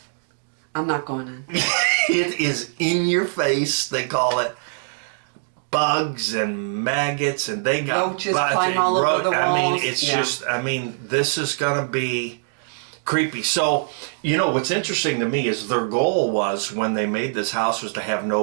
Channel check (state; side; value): silent; left; digital silence